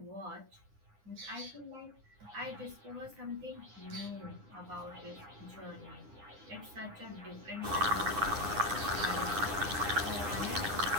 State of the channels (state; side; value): late; left; 9.8 ms